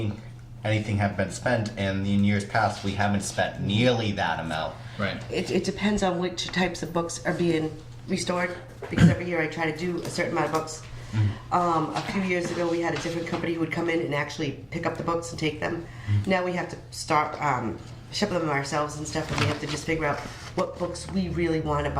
anything have been spent, and in years past we haven't spent nearly that amount. Right. It depends on which types of books are being restored, because every year I try to do a certain amount of books. A few years ago, we had a different company who would come in and actually pick up the books and take them. Now we have to start ship them ourselves and stuff, and we have to just figure out what books we really want to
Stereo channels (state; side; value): identical; both; correlation 1.00